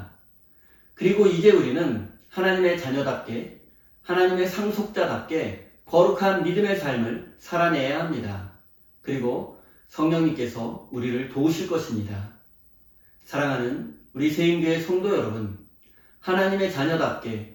그리고 이제 우리는 하나님의 자녀답게 하나님의 상속자답게 거룩한 믿음의 삶을 살아내야 합니다. 그리고 성령님께서 우리를 도우실 것입니다. 사랑하는 우리 세인교회 성도 여러분, 하나님의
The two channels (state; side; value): identical; both; correlation 1.00